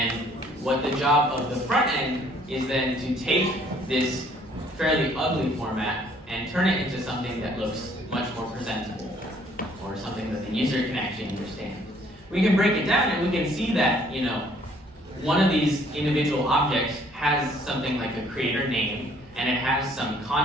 what the job of the front end is then to take this fairly ugly format and turn it into something that looks much more presentable, or something that the user can actually understand. We can break it down and we can see that, you know, one of these individual objects has something like a creator name, and it has some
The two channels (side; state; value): both; normal; correlation 0.61